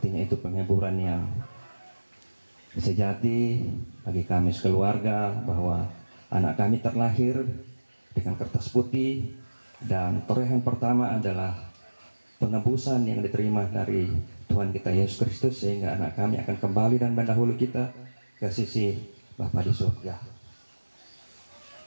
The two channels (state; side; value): inverted; both; correlation -1.00